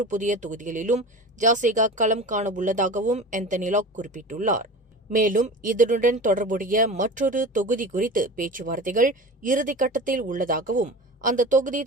புதிய தொகுதிகளிலும் ஜாசிகா களம் காண உள்ளதாகவும் ஆந்தனி லாக் குறிப்பிட்டுள்ளார். மேலும் இதனுடன் தொடர்புடைய மற்றொரு தொகுதி குறித்து பேச்சுவார்த்தைகள் இறுதிக்கட்டத்தில் உள்ளதாகவும், அந்த தொகுதி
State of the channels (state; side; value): normal; both; correlation 0.33